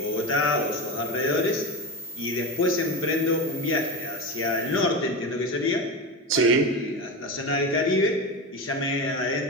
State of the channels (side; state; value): both; normal; correlation 0.21